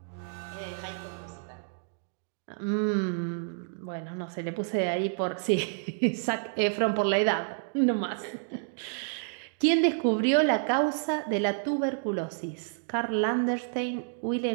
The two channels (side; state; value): left; silent; digital silence